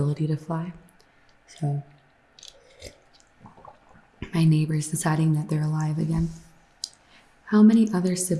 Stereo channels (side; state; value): both; identical; correlation 1.00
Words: to fly. So, my neighbor's deciding that they're alive again. How many other